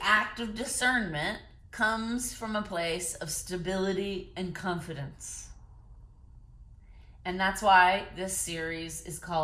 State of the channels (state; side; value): identical; both; correlation 1.00